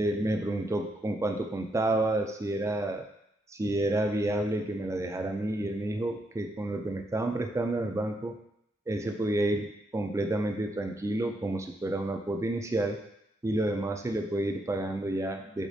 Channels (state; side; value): normal; both; correlation 0.78